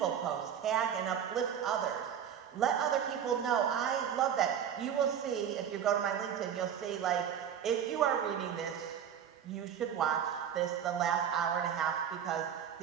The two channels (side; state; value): left; quieter; 8.7 dB